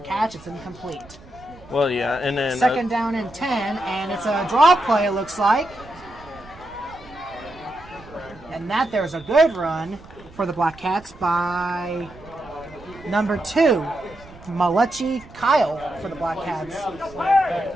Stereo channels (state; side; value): noise; right; rumble, 21 dB below the sound